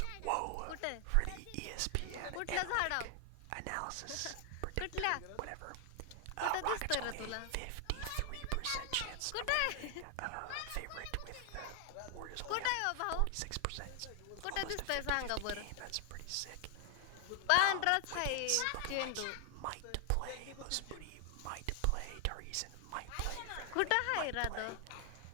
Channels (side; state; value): both; different; correlation 0.00